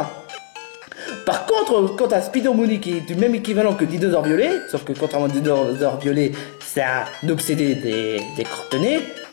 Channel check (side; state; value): right; silent; 66 dB below the other